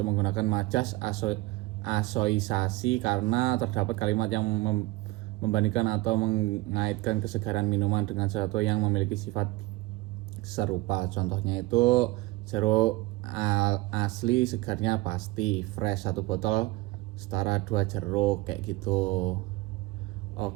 menggunakan majas asoisasi karena terdapat kalimat yang membandingkan atau mengaitkan kesegaran minuman dengan sesuatu yang memiliki sifat serupa. Contohnya itu jeruk asli segarnya pasti, fresh 1 botol setara 2 jeruk, kayak gitu.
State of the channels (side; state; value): left; quieter; 19.7 dB